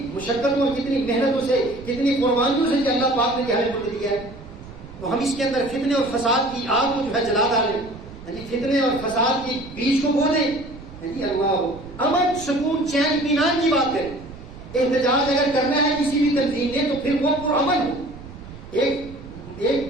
مشقتوں اور کتنی محنتوں سے, کتنی قربانیوں سے کہ اللہ پاک نے ہمیں ملک دیا ہے. تو ہم اس کے اندر فتنے اور فساد کی آگ کو جو ہے جلا ڈالیں, فتنے اور فساد کی بیج کو بولیں. اللہ امن سکون چین اطمینان کی بات کریں. احتجاج اگر کرنا ہے کسی بھی تنظیم نے تو پھر وہ پرامن ہو, ایک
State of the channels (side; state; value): right; noise; rumble, 16 dB below the sound